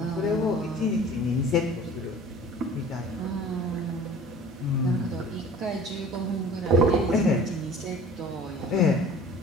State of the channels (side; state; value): both; normal; correlation 0.45